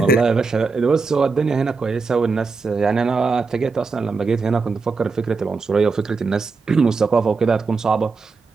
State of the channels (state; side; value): quieter; left; 4.4 dB